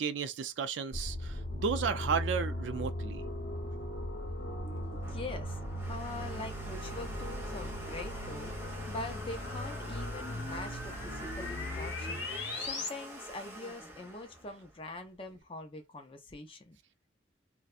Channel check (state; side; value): normal; both; correlation 0.35